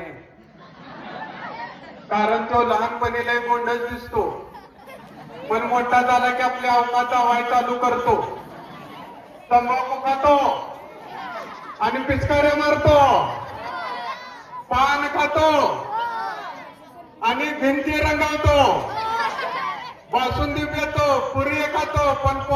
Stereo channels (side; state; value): both; identical; correlation 1.00